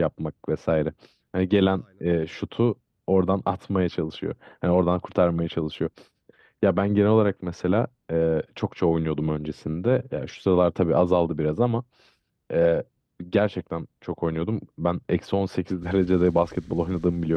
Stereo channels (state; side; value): identical; both; correlation 1.00